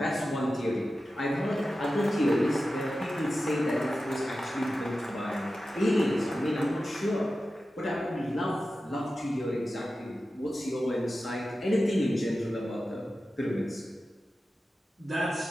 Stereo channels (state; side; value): normal; both; correlation 0.93